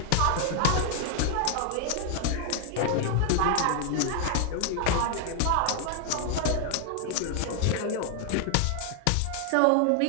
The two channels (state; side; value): different; both; correlation 0.00